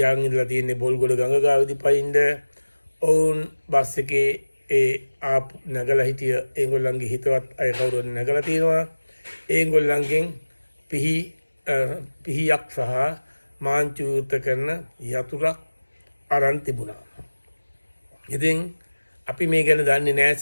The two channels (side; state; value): both; inverted; correlation -1.00